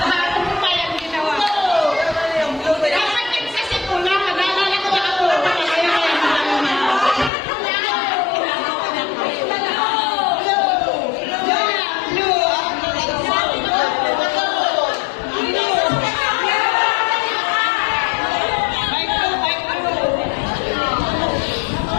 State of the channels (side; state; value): right; drops out; at 7.3 s